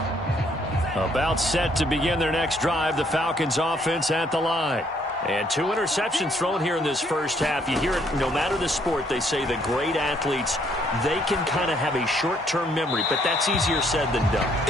About set to begin their next drive, the Falcons offense at the line. And 2 interceptions thrown here in this first half. You hear it no matter the sport. They say the great athletes, they can kind of have a short-term memory, but that's easier said than done.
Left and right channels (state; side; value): normal; both; correlation 0.67